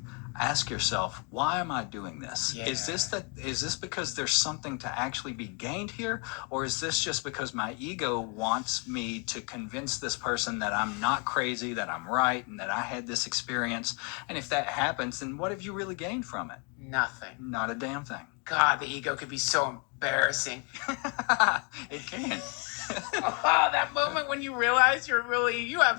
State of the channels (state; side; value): quieter; right; 35.5 dB